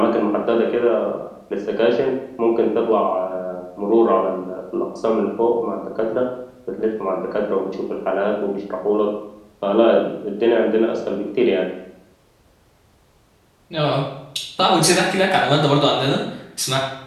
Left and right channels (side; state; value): both; identical; correlation 1.00